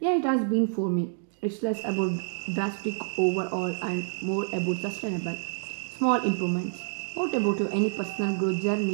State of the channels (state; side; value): silent; left; digital silence